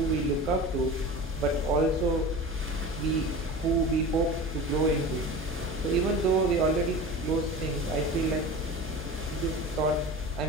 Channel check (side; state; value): both; normal; correlation 0.33